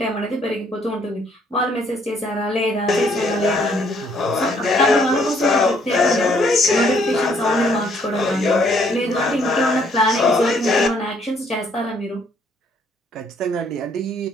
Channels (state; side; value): normal; both; correlation 0.66